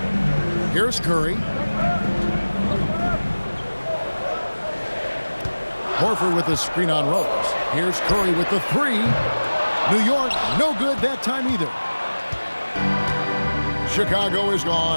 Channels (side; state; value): both; inverted; correlation -1.00